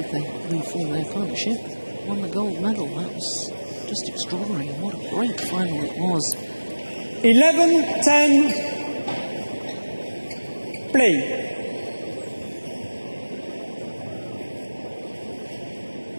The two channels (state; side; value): inverted; both; correlation -1.00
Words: They reformed their partnership, won the gold medal. That was just extraordinary. What a great final it was. 11-10. Play.